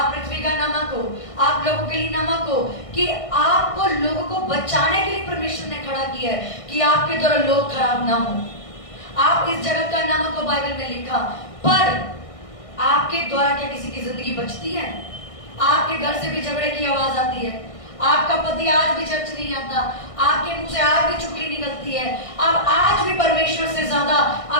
पृथ्वी का नमक हो, आप लोगों के लिए नमक हो, कि आपको लोगों को बचाने के लिए परमेश्वर ने खड़ा किया है कि आपके द्वारा लोग खराब ना हो। आप इस जगत का नमक हो, बाइबल में लिखा। पर आपके द्वारा क्या किसी की जिंदगी बचती है? आपके घर से भी झगड़े की आवाज आती है, आपका पति आज भी चर्च नहीं आता, आपके मुंह से आज भी चुगली निकलती है, आप आज भी परमेश्वर से ज्यादा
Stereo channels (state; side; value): late; right; 1.6 ms